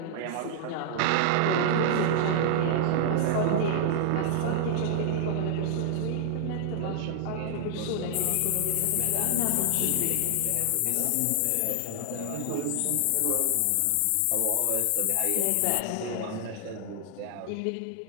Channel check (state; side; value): different; both; correlation -0.01